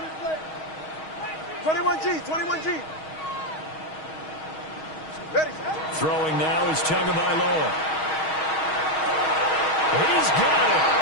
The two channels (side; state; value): right; late; 6.3 ms